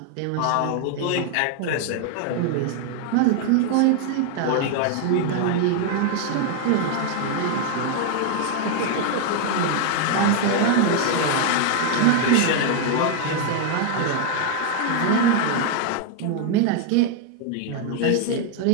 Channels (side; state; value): both; different; correlation 0.00